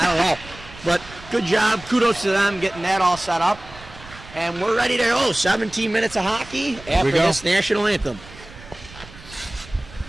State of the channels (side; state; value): right; noise; rumble, 19 dB below the sound